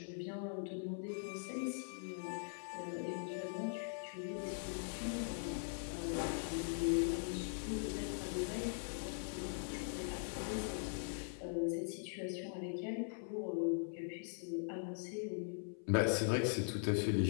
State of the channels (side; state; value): right; silent; 50 dB below the other